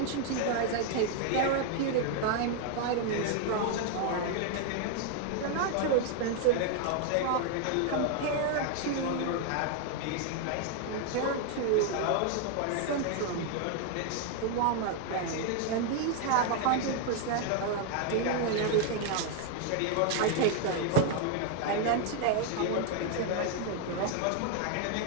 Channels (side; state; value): both; different; correlation 0.00